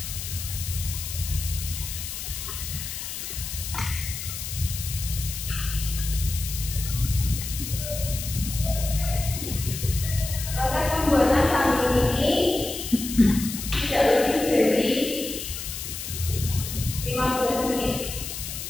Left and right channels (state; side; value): noise; left; hiss, 7 dB below the sound